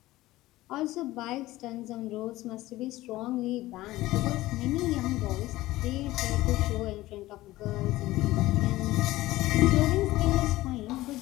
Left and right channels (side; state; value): right; quieter; 17.3 dB